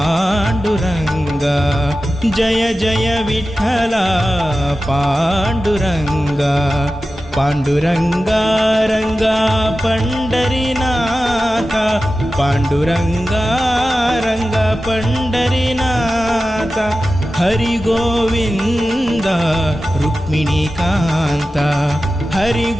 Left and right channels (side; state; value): both; normal; correlation 0.94